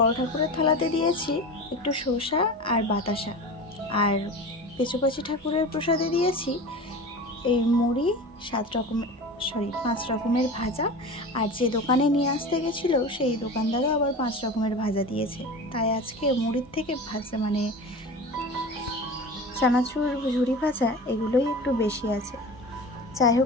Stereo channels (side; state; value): both; normal; correlation 0.32